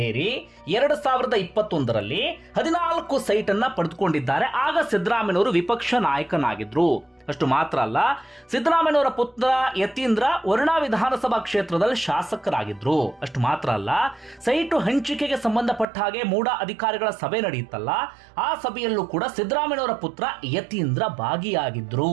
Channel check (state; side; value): drops out; left; at 15.9 s